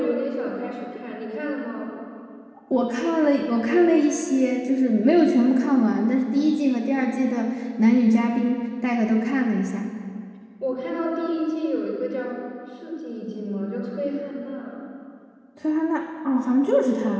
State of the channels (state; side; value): identical; both; correlation 1.00